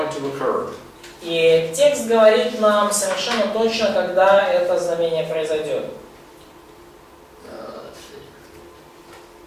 to occur. И текст говорит нам совершенно точно, когда это знамение произойдет.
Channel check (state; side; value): identical; both; correlation 1.00